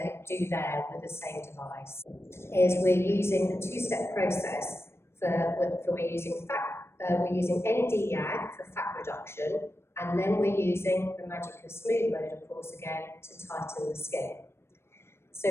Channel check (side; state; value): right; late; 0.12 ms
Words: there with the same device? Is we're using a two-step process we're using ND-YAG for fat reduction, and then we're using the magic of smooth mode, of course, again, to tighten the skin. So